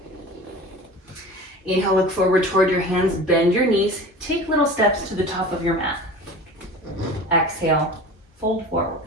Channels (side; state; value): both; normal; correlation 0.37